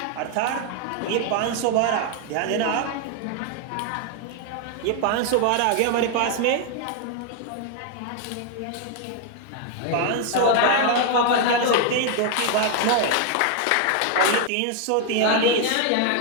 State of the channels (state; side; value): different; both; correlation 0.00